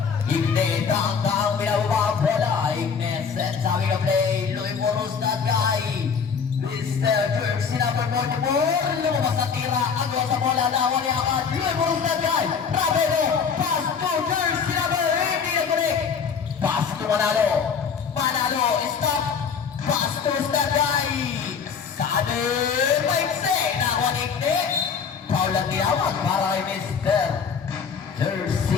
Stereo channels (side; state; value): right; quieter; 6.3 dB